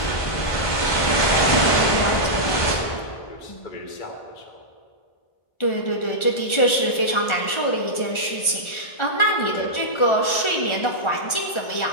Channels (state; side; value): late; right; 1.4 ms